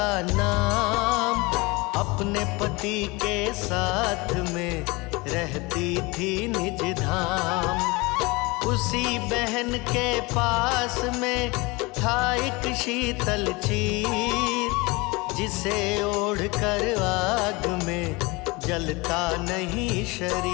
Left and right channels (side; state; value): right; quieter; 25.0 dB